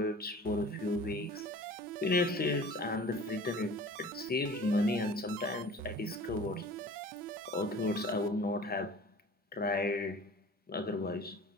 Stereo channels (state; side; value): normal; both; correlation 0.43